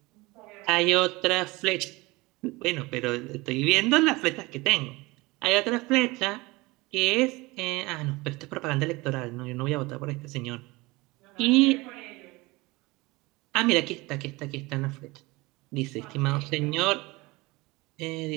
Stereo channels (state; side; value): quieter; left; 22.6 dB